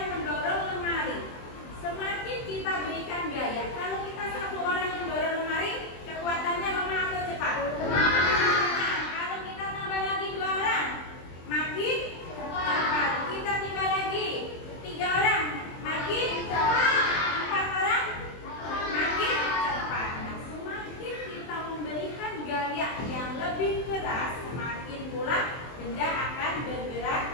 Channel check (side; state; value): right; late; 23 ms